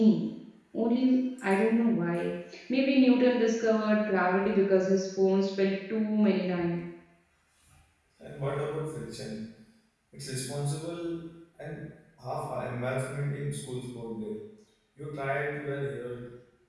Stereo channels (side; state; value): both; identical; correlation 1.00